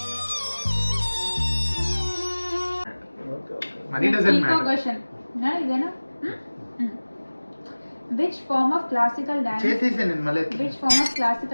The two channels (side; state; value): both; inverted; correlation -1.00